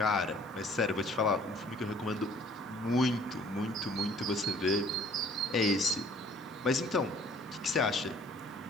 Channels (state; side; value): normal; both; correlation 0.55